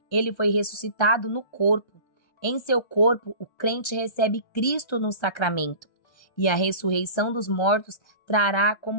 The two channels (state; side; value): late; right; 1.3 ms